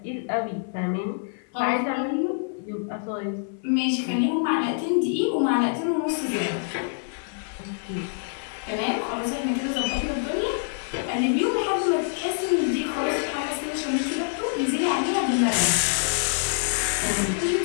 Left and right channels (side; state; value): right; silent; digital silence